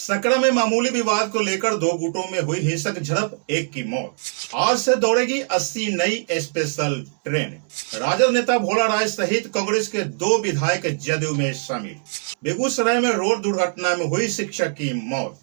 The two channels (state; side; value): silent; left; digital silence